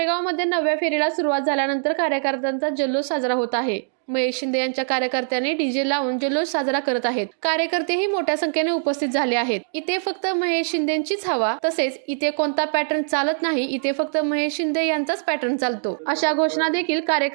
9व्या फेरीला सुरुवात झाल्यानंतर कार्यकर्त्यांचा जल्लोष साजरा होत आहे। महेश शिंदे यांच्या कार्यकर्त्यांनी डीजे लावून जल्लोष साजरा करत आहेत। कार्यकर्तेही मोठ्या संख्येने उपस्थित झाले आहेत। इथे फक्त महेश शिंदेंचीच हवा, तसेच इथे कोणता पॅटर्न चालत नाही, इथे फक्त महेश शिंदे यांचाच पॅटर्न चालतो, अशा घोषणा देखील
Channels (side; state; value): left; silent; digital silence